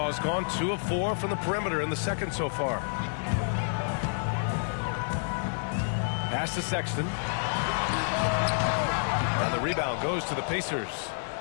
gone 2 of 4 from the perimeter in the second so far. Pass to Sexton. And the rebound goes to the Pacers.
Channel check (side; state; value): right; silent; 58 dB below the other